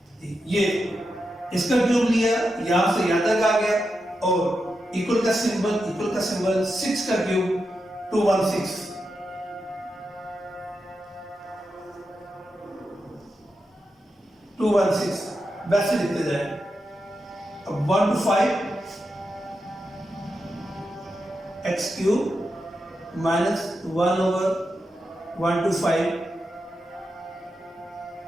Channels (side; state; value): both; normal; correlation 0.87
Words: ये इसका क्यूब लिया, यहां से यहां तक आ गया, और इक्वल का सिंबल 6 का क्यूब 216, 216 वैसे लिखते जाए। अब 1 to 5 x cube minus 1 over 1 to 5